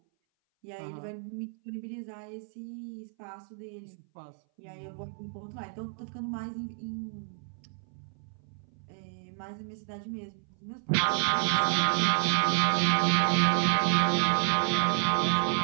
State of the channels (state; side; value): silent; left; 58 dB below the other